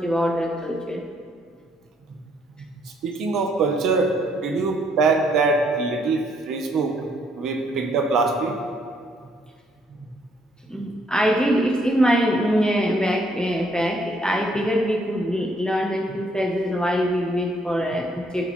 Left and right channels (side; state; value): both; normal; correlation 0.69